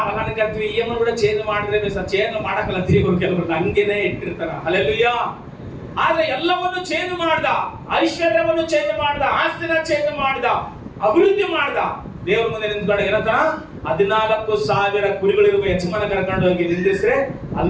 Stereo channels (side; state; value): both; identical; correlation 1.00